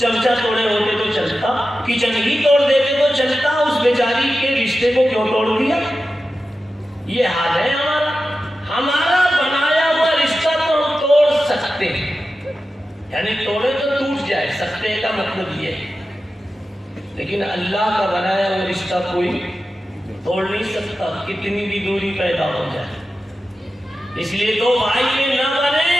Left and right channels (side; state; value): both; normal; correlation 0.92